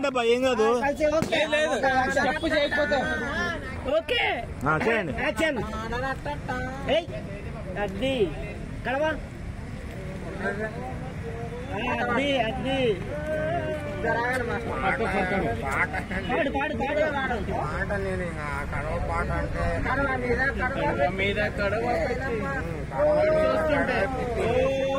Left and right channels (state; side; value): identical; both; correlation 1.00